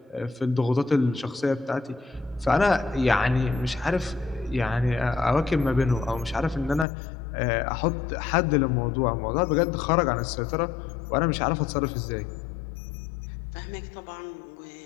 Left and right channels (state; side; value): drops out; right; at 6.9 s